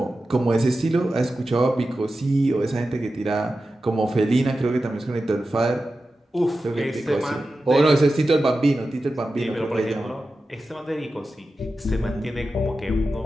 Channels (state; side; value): normal; both; correlation 0.93